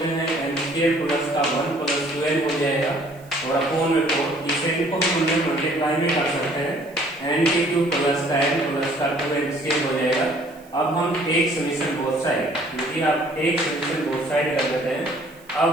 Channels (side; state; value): right; noise; hiss, 27 dB below the sound